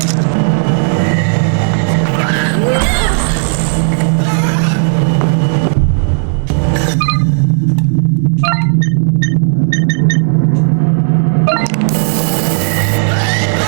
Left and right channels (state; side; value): silent; left; digital silence